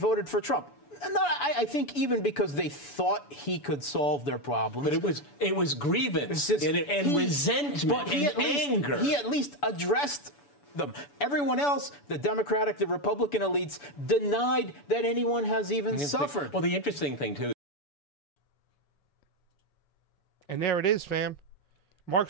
for Trump. No, I think even because they thought he could solve their problems. But it was grievance and resentment and anger. He at least addressed them. Everyone else, the Democratic, the Republican elites, denied that anyone has even suffered. Well, the interesting thing, too. And there it is, fam. Mark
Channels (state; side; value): late; right; 7.0 ms